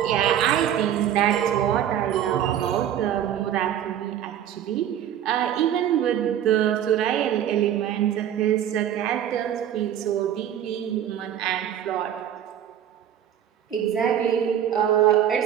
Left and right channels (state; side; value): quieter; left; 10.3 dB